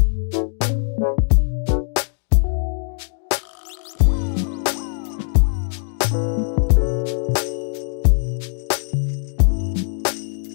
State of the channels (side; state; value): right; silent; 65 dB below the other